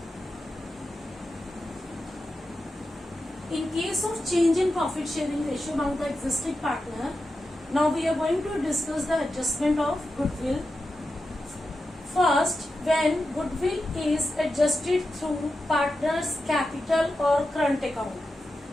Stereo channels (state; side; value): normal; both; correlation 0.90